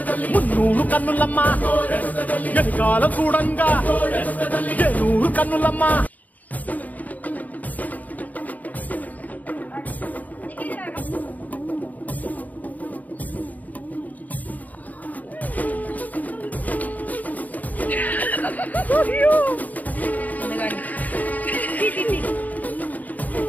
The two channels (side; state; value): right; late; 0.077 ms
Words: మున్నూరు కన్నులమ్మా, వెనుకాల చూడంగా ఏనూరు కన్నులమ్మా.